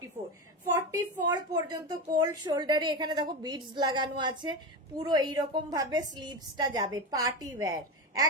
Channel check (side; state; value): both; normal; correlation 0.19